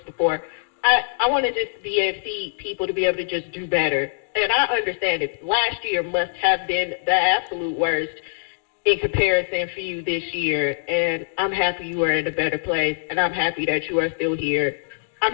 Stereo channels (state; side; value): silent; right; digital silence